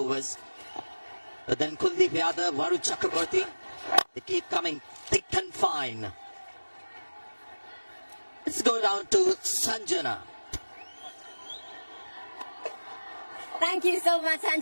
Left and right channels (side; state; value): both; inverted; correlation -1.00